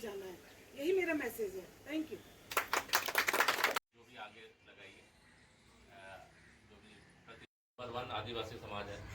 जाना है। यही मेरा मैसेज है। Thank you. जो भी आगे लगाइए, जो भी नंबर 1 आदिवासी समाज है।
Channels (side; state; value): both; identical; correlation 1.00